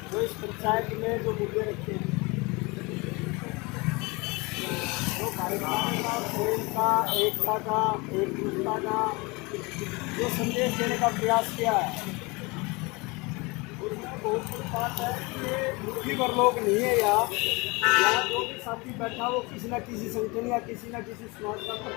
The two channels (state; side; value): quieter; right; 26.3 dB